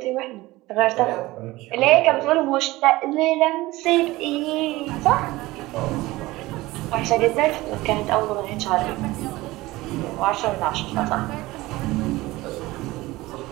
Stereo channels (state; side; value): quieter; left; 19.2 dB